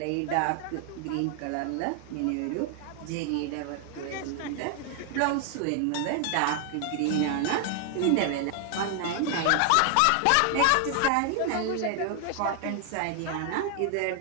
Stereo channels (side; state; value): both; different; correlation 0.00